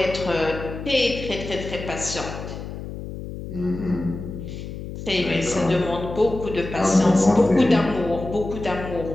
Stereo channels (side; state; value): left; noise; hum, 9 dB below the sound